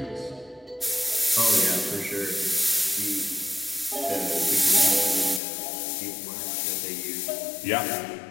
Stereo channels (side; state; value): right; drops out; at 5.4 s